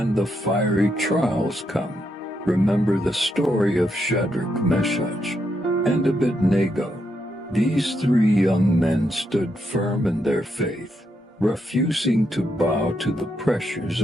the fiery trials come, remember the story of Shadrach, Meshach, and Abednego. These 3 young men stood firm in their faith, refusing to bow to the pressures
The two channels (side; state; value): both; normal; correlation 0.80